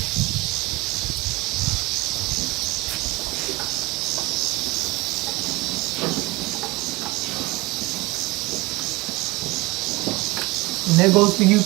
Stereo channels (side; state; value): left; quieter; 22.5 dB